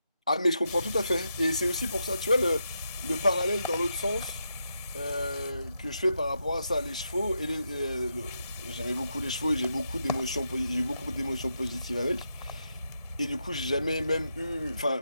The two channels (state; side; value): inverted; both; correlation -0.83